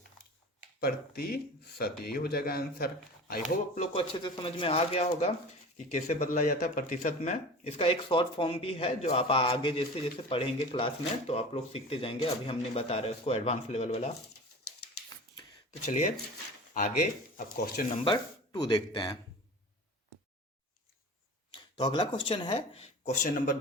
यही हो जाएगा आंसर। आई होप आप लोग को अच्छे से समझ में आ गया होगा कि कैसे बदला जाता है प्रतिशत में। इसका एक शॉर्ट फॉर्म भी है जो आप आगे जैसे जैसे पढ़ेंगे क्लास में तो आप लोग सीखते जाएंगे, अभी हम नहीं बता रहे उसको, एडवांस लेवल वाला। तो चलिए आगे अब क्वेश्चन नंबर 2 देखते हैं। तो अगला क्वेश्चन है क्वेश्चन नंबर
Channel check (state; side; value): normal; both; correlation 0.37